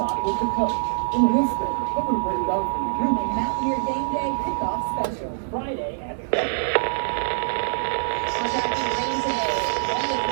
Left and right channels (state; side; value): silent; left; digital silence